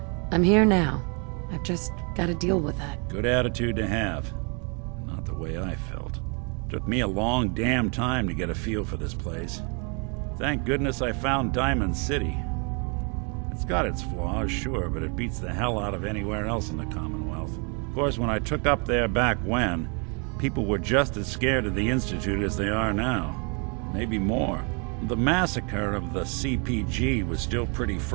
I'm here now. I've just got to deal with that. Good attitude to have. Not the way I felt. Took me a long damn time to get a feel for this place. Thank goodness I found Diamond City. It's got its flaws, sure, but it beats the hell out of anywhere else in the Commonwealth. Of course, when I took up there back when, people were just as scared of the Institute as they are now. Maybe more. The massacre of the CPG was still pretty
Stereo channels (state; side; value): quieter; left; 35.4 dB